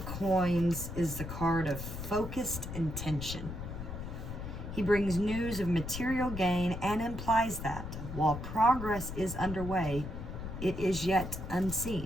Coins is the card of focused intention. He brings news of material gain and implies that while progress is underway, it is yet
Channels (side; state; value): left; noise; rumble, 7 dB below the sound